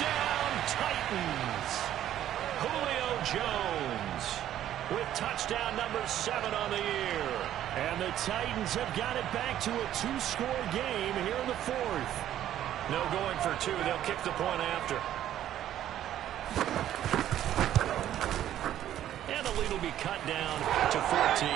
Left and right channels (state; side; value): quieter; left; 11.8 dB